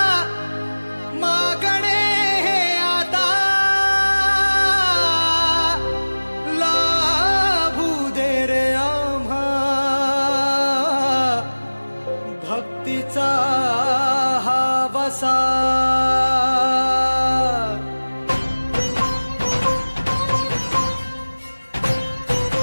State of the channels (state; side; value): inverted; both; correlation -1.00